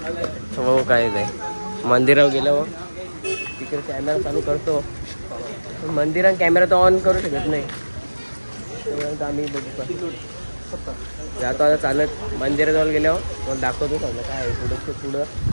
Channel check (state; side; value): inverted; both; correlation -1.00